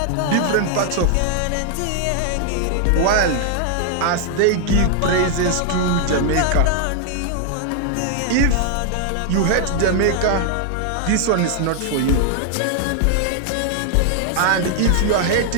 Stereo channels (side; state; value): both; different; correlation 0.00